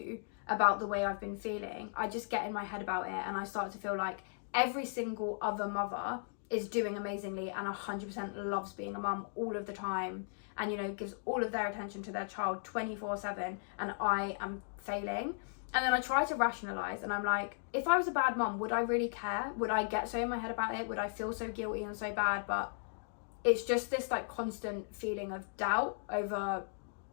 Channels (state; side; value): silent; right; digital silence